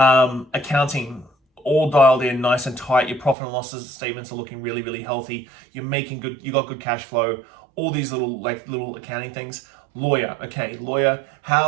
all dialed in, nice and tight. Your profit and loss statements are looking really, really healthy. You're making good, you got good cash flow. All these little accounting things. Lawyer, okay, lawyer,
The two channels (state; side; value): drops out; left; at 3.4 s